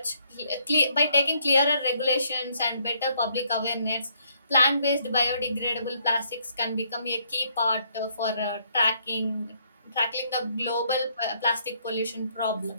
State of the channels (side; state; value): both; inverted; correlation -0.70